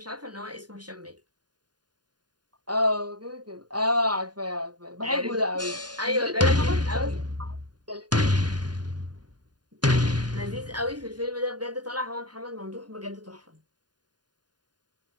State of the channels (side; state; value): left; late; 0.70 ms